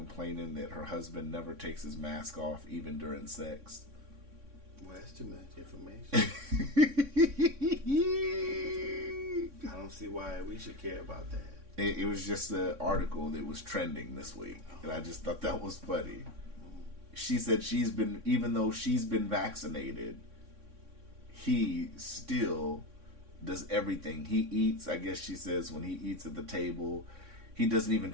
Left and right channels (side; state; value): left; late; 3.6 ms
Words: that her husband never takes his mask off even during sex? Well, that's too much information. I don't see why we should care about that. It was just an article that was trending this week, and I just thought that was funny. She said even though she's been vaccinated, he still does everything. He eats, I guess she says, when he eats at the table, he doesn't even